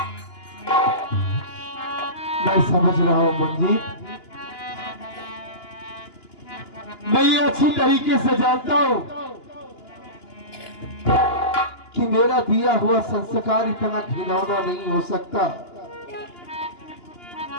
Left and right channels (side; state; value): right; late; 2.9 ms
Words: मैं समझ रहा हूं मंजीत, मैं ये अच्छी तरीके से जानता हूं कि मेरा दिया हुआ संस्कार इतना घिनौना नहीं हो सकता।